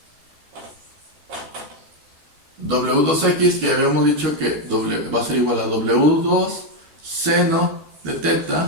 W2X, que habíamos dicho que va a ser igual a W2 seno de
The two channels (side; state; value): left; late; 13 ms